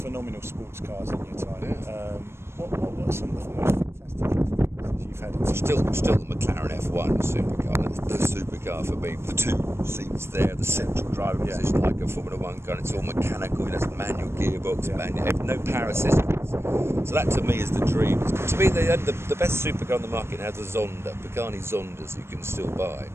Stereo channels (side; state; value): left; late; 0.12 ms